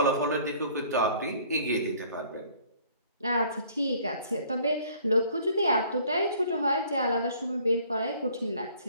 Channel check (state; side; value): inverted; both; correlation -0.56